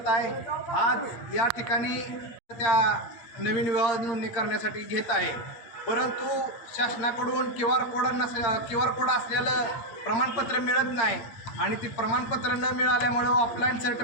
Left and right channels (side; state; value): right; late; 8.6 ms